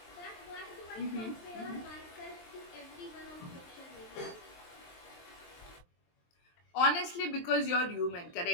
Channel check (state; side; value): late; right; 23 ms